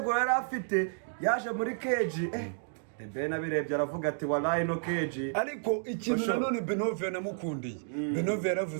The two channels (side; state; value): left; silent; digital silence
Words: yari afite yaje muri keje Ben abirebye aravuga ati wallahi no keji ariko ikintu nanone Benove namukundiye Benove